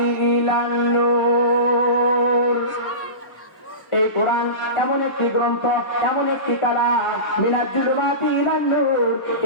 ইলান নূর। এই কোরআন এমন একটি গ্রন্থ, এমন একটি কালাম, মিনাল জুলুমাতি ইলান নূর।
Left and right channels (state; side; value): late; right; 1.1 ms